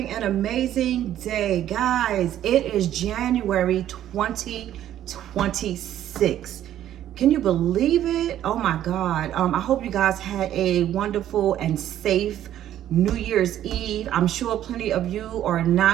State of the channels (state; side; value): quieter; left; 11.8 dB